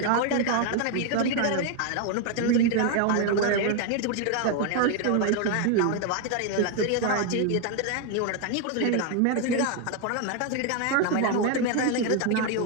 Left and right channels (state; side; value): different; both; correlation 0.01